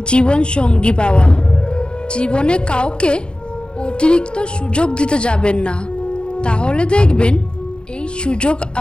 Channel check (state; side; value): late; right; 0.051 ms